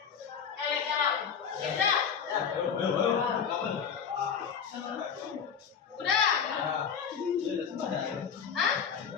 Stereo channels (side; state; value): right; quieter; 7.1 dB